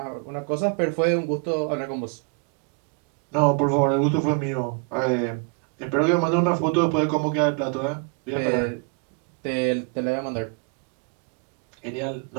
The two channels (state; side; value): quieter; left; 37.1 dB